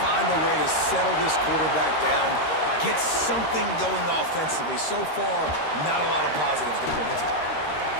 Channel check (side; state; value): right; late; 13 ms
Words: a way to settle this quarterback down, get something going offensively. So far, not a lot of positives to point to.